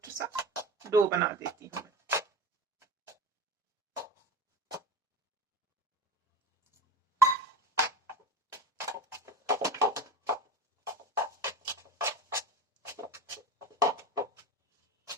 सा डो बना देती हूँ।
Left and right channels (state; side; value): normal; both; correlation 0.29